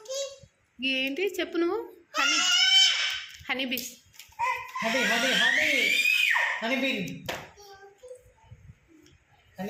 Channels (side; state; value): both; identical; correlation 1.00